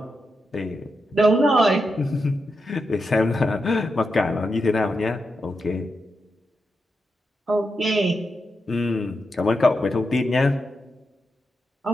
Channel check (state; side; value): normal; both; correlation 0.86